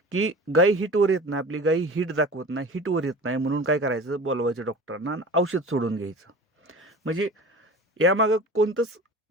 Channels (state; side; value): normal; both; correlation 0.38